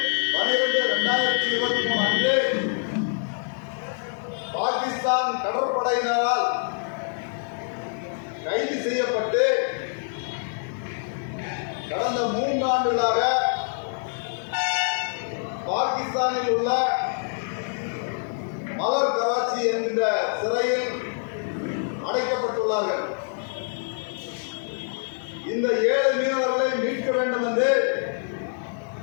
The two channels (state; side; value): silent; right; digital silence